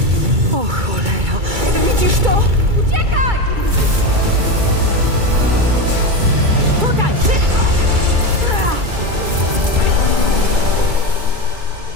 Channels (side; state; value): left; late; 2.3 ms